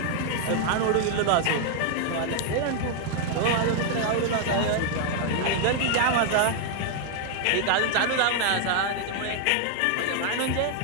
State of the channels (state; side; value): different; both; correlation 0.00